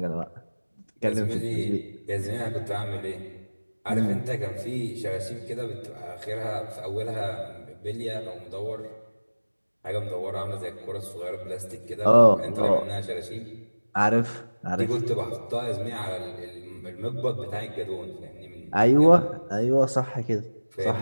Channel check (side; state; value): both; inverted; correlation -1.00